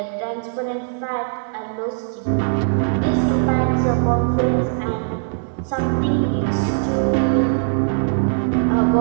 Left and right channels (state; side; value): silent; left; digital silence